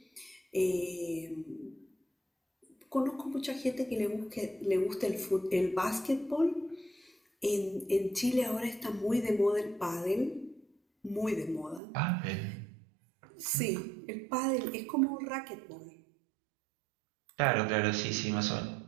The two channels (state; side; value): drops out; left; at 11.8 s